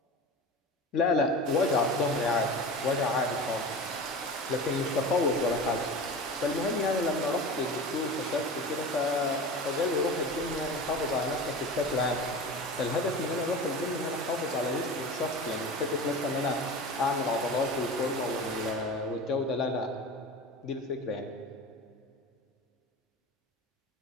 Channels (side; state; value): both; normal; correlation 0.32